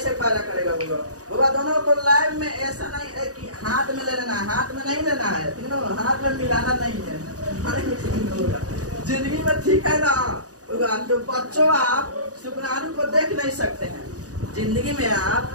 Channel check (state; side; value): late; left; 0.67 ms